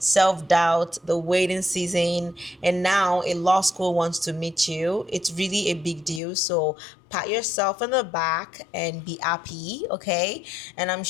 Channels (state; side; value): drops out; right; at 6.2 s